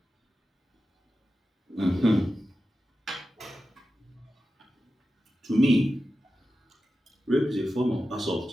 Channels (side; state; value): both; normal; correlation 0.92